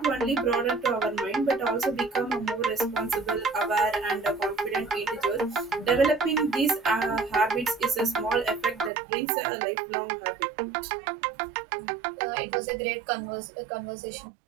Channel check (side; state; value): left; drops out; at 8.9 s